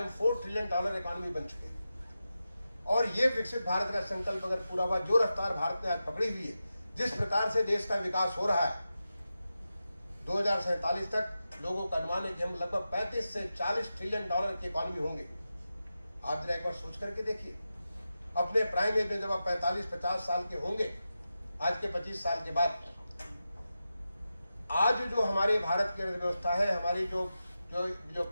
$4 ट्रिलियन इकॉनमी बन चुके हैं। और ये विकसित भारत का संकल्प अगर पूरा हुआ, जो रफ्तार भारत ने आज पकड़ी हुई है, जिस प्रकार से देश का विकास हो रहा है, 2047 तक लोगों का अनुमान है कि हम लगभग 35 से 40 ट्रिलियन डॉलर की इकॉनमी होंगे। आप जरा एक बार सोच करके देखिए, अपने प्राइम एज में जब आप 45-50 साल के होंगे, आज के 25 साल के बाद, आज जो हमारे भारत की अर्थव्यवस्था है, हमारी जो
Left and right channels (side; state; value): both; inverted; correlation -0.91